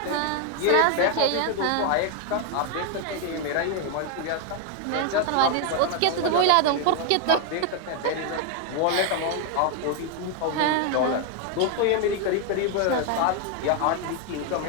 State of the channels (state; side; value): different; both; correlation 0.01